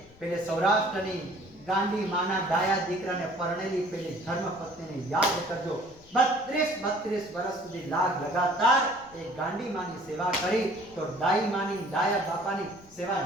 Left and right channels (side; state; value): left; noise; rumble, 25 dB below the sound